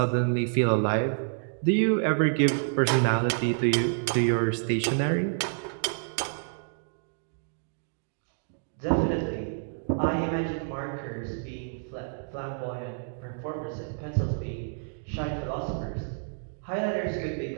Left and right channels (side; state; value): left; silent; digital silence